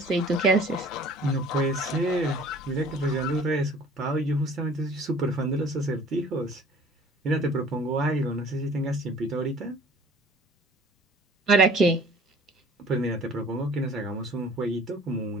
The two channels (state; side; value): normal; both; correlation 0.49